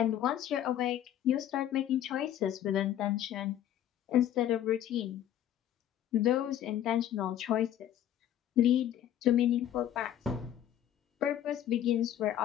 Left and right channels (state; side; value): quieter; right; 11.1 dB